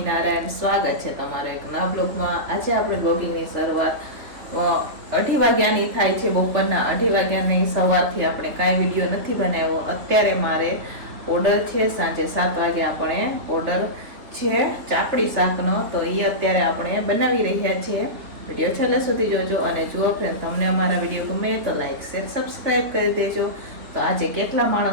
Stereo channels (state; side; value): late; left; 3.5 ms